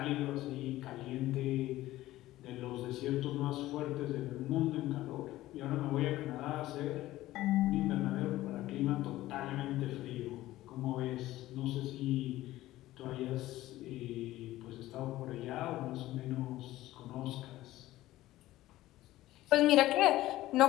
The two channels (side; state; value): right; quieter; 16.0 dB